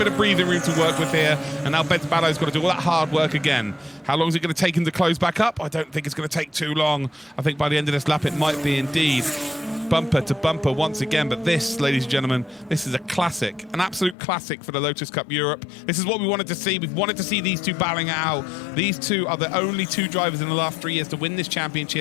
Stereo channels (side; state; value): right; drops out; at 14.2 s